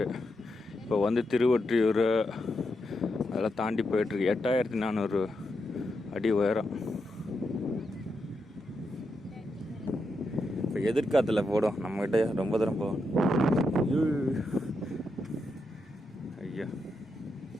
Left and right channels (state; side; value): normal; both; correlation 0.84